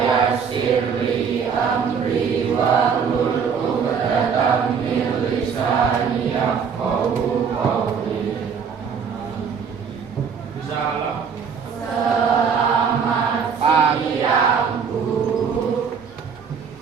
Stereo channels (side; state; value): left; quieter; 6.5 dB